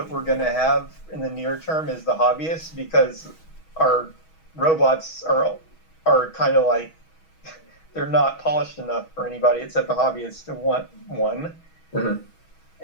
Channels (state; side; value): late; right; 6.3 ms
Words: we're going to have in the near term is the hobbyists, because our robots are kind of like, they're not polished enough for anybody except the hobbyists to want one. Mm-hmm.